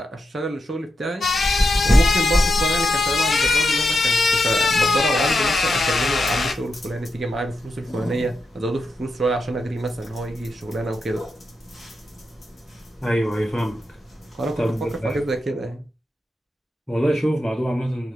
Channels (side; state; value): both; normal; correlation 0.86